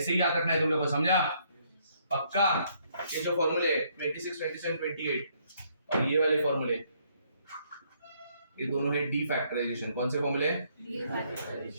ही याद रखना है तुम लोग को, समझा? पक्का? ये जो फॉर्मूले 26, 27, 28 और ये वाले फॉर्मूले, ये दोनों है डी फैक्टराइजेशन। कौन से फॉर्मूले?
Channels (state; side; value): inverted; both; correlation -0.69